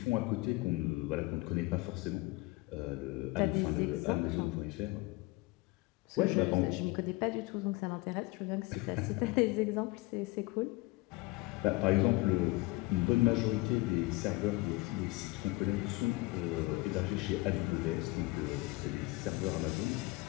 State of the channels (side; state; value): right; quieter; 22.1 dB